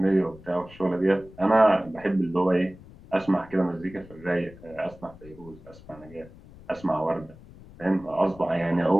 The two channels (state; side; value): noise; left; rumble, 20 dB below the sound